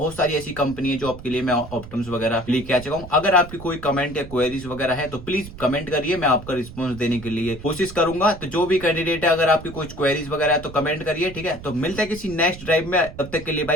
सारी ऐसी कंपनी है जो आपके लिए मैं ऑप्टम्स वगैरह लेके आ चुका हूँ। अगर आपकी कोई कमेंट या क्वेरीज वगैरह है तो प्लीज कमेंट करिए, मैं आपका रिस्पॉन्स देने के लिए कोशिश करूंगा। तो जो भी कैंडिडेट है अगर आपकी कुछ क्वेरीज वगैरह है तो कमेंट करिए, ठीक है। तो मिलते हैं किसी नेक्स्ट ड्राइव में, तब तक के लिए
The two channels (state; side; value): noise; right; rumble, 14 dB below the sound